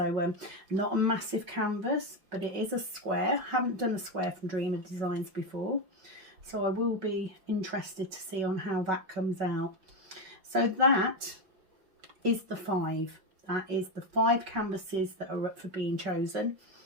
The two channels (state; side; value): late; left; 5.4 ms